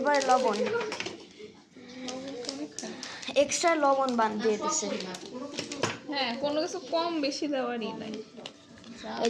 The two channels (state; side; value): identical; both; correlation 1.00